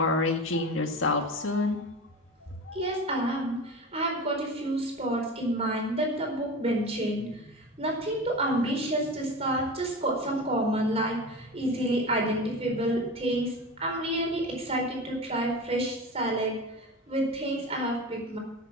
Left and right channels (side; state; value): both; normal; correlation 0.29